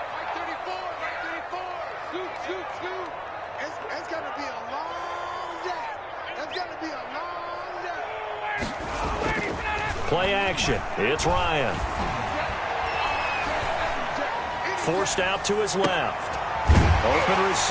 Play action. It's Ryan. Forced out to his left. Open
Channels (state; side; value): identical; both; correlation 1.00